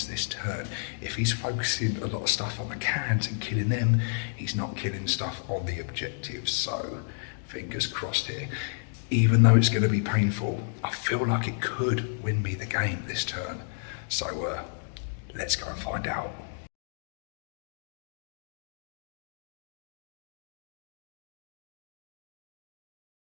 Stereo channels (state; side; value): silent; right; digital silence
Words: this turn. If he's focusing a lot of stuff on the cans and killing them, he's not killing stuff on the objectives. So fingers crossed here. Even though it's going to be painful, I feel like it could win me the game this turn. So let's go and find out.